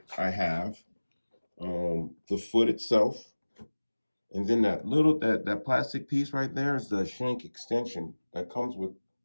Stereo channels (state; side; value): inverted; both; correlation -1.00